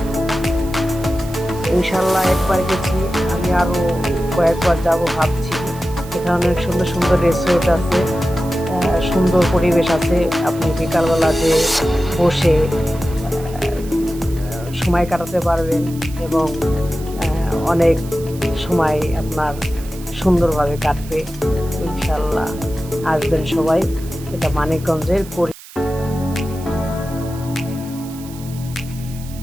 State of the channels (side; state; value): right; noise; hiss, 18 dB below the sound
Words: ইনশাল্লাহ একবার গেছি, আমি আরও কয়েকবার যাব ভাবছি। এখানে অনেক সুন্দর সুন্দর রিসোর্ট আছে, সুন্দর পরিবেশ আছে। আপনি বিকালবেলা যে বসে সময় কাটাতে পারবেন এবং অনেক সময় আপনার সুন্দরভাবে কাটবে। ইনশাল্লাহ আসবেন সবাই। এটা মানিকগঞ্জের